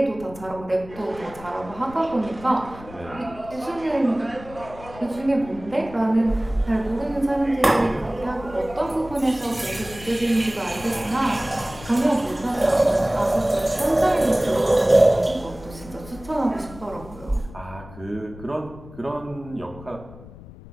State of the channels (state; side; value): noise; left; rumble, 17 dB below the sound